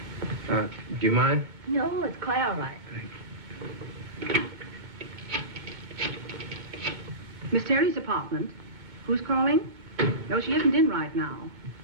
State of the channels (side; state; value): left; late; 8.9 ms